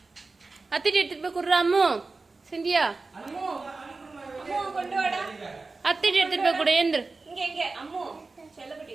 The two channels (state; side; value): quieter; left; 3.8 dB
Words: அத்திட்டு எடுத்துட்டு போய் குடுறா அம்மு. சிந்தியா அத்திட்டு எடுத்துட்டு போய் கொடு. ஏந்திரு